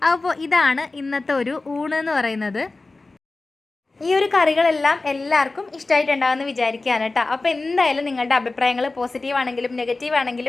അപ്പോൾ ഇതാണ് ഇന്നത്തെ ഒരു ഊണ് എന്ന് പറയുന്നത്. ഈ ഒരു കറികളെല്ലാം എല്ലാവർക്കും ഇഷ്ടമായിട്ടുണ്ടാകുമെന്ന് വിചാരിക്കുകയാണ് കേട്ടോ. അപ്പോൾ എന്തായാലും നിങ്ങളുടെ അഭിപ്രായങ്ങൾ പോസിറ്റീവ് ആണെങ്കിലും നെഗറ്റീവ്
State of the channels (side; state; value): right; quieter; 3.4 dB